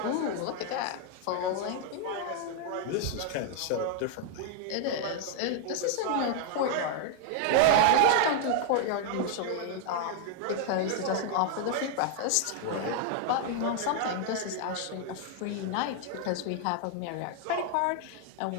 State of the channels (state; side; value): different; both; correlation 0.00